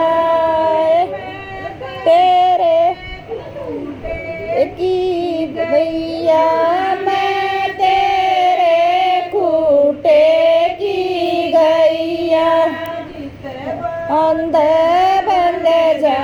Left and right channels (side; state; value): both; identical; correlation 1.00